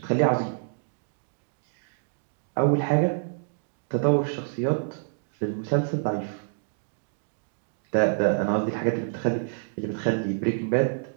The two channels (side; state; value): left; silent; digital silence